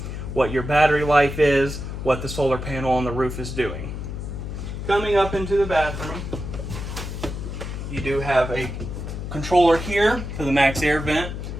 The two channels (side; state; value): left; noise; hum, 6 dB below the sound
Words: what your battery life is, what the solar panel on the roof is doing. Coming up into the bathroom, you do have a controller here for the max air vent,